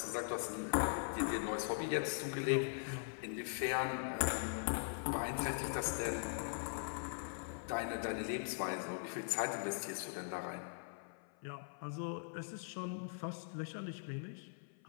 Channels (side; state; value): right; silent; 50 dB below the other